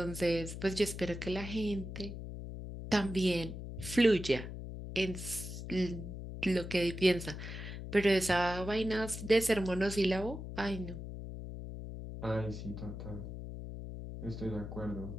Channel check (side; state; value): left; noise; hum, 8 dB below the sound